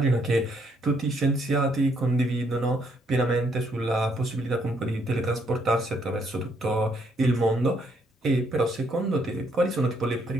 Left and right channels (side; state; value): both; normal; correlation 0.71